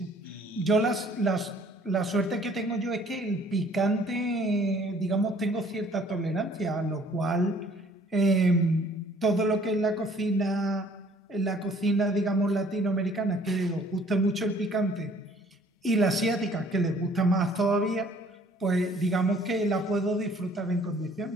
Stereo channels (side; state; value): both; normal; correlation 0.57